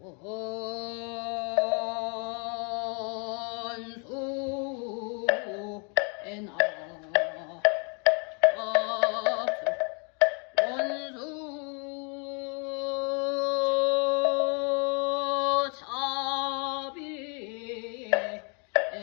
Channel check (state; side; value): quieter; right; 37.3 dB